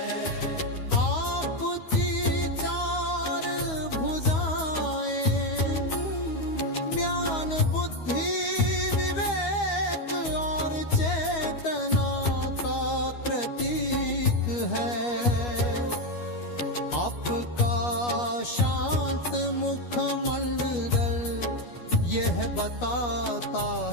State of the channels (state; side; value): late; right; 12 ms